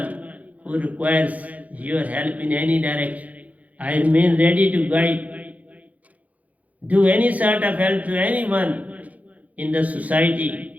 who requires your help in any direction. I remain ready to guide, do any sort of help to anyone in the society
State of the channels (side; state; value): left; late; 0.072 ms